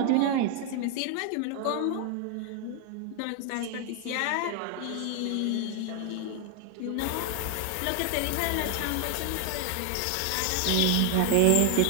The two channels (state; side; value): different; both; correlation 0.00